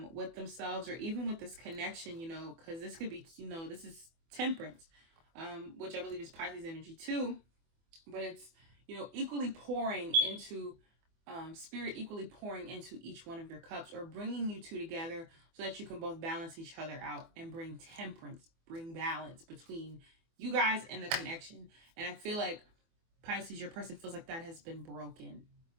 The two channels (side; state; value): left; late; 24 ms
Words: with themselves, or even with this connection, because this could be, this is Temperance. Which I believe is Pisces energy too, but it's, equally pouring into, spirit equally pouring into each one of your cups, or bringing you two together so that you can both balance each other out and bring temperance, bring balance between you guys and the connection. And I feel like Pisces, your person, feels like that has been broken.